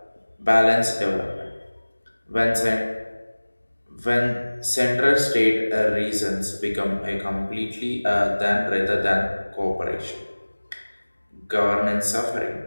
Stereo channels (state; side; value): inverted; both; correlation -1.00